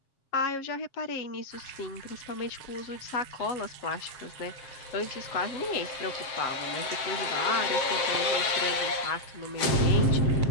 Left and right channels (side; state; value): right; late; 7.6 ms